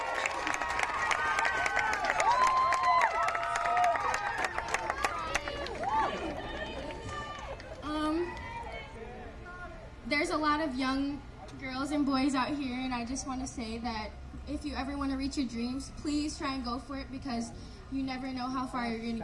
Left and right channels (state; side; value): identical; both; correlation 1.00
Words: There's a lot of young girls and boys out here, and I just want to say that if you ever want to reach your dreams, please try and go for it, because you never know how far you're going to